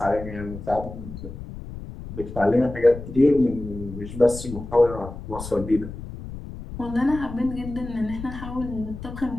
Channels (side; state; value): left; noise; rumble, 11 dB below the sound